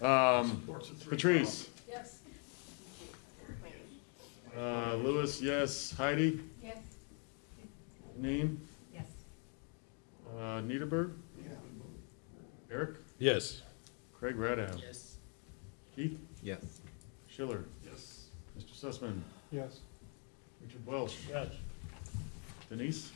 Patrice. Yes. Lewis, yes. Heidi? Yes. Janine? Yes. Niederberg? Eric? Yes. Craig Radow? Yes. Keith? Yes. Schiller? Yes. Mr. Sussman? Yes. Richard Welsh? Yes. Denise?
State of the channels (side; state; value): right; quieter; 39.3 dB